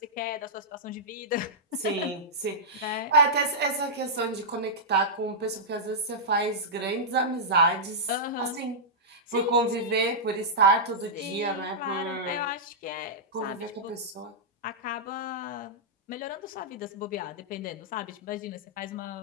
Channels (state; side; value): normal; both; correlation -0.11